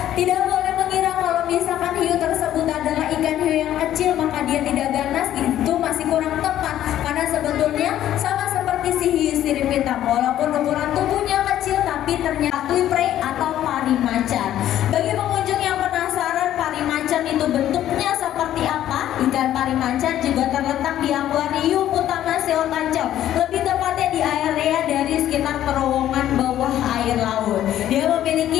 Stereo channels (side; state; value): right; quieter; 12.1 dB